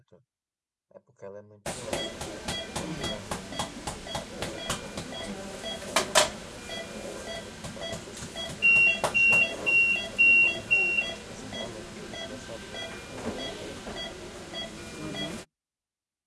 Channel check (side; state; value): both; identical; correlation 1.00